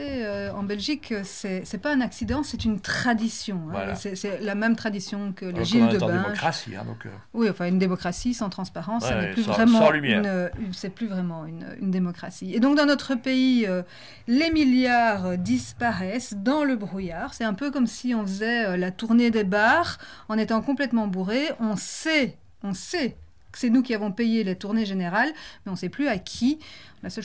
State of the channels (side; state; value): both; identical; correlation 1.00